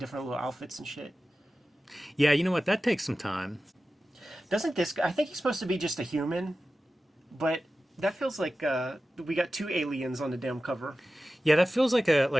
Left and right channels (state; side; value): normal; both; correlation 0.94